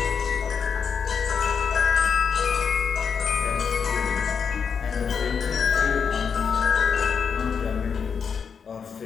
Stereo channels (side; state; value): right; quieter; 6.4 dB